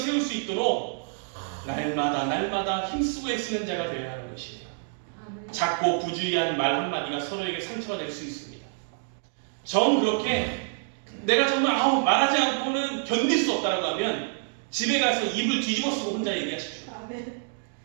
수 있도록 날마다 힘쓰고 애쓰는 자가 되어야 하는 것이에요. 아멘. 작고 부주의한 말 한마디가 서로에게 상처가 될 수 있습니다. 정 그렇게 내가 정말 말하지 않고는 견딜 수 없다라고 하면 집에 가서 입을 뒤집어 쓰고 혼자 얘기하십시오. 아멘.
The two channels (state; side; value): silent; left; digital silence